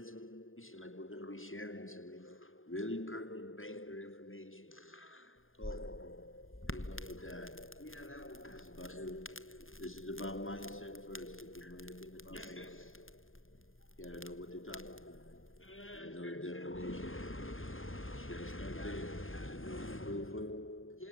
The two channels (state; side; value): late; right; 0.59 ms